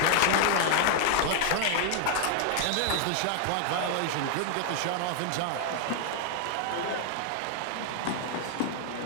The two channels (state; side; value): different; both; correlation 0.00